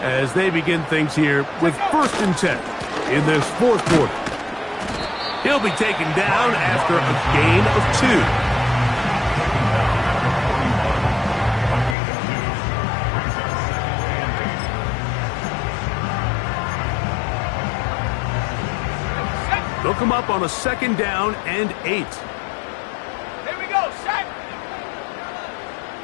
as they begin things here with 1st and 10 in this 4th quarter. He'll be taken down after a gain of 2. They'll come up on a 2nd down and 8. Here we go, set.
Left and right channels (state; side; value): drops out; right; at 12.0 s